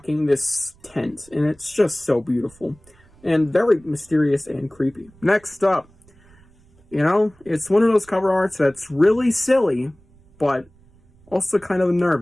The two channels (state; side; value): noise; right; rumble, 29 dB below the sound